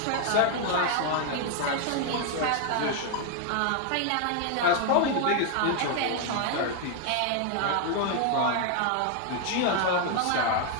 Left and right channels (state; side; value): different; both; correlation 0.00